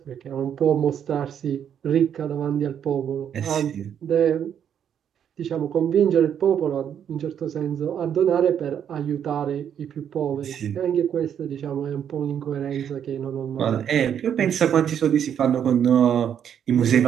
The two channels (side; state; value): left; quieter; 8.8 dB